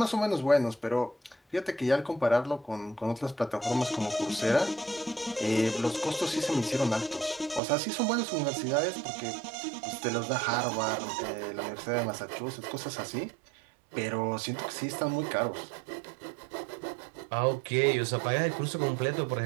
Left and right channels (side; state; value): left; drops out; at 7.6 s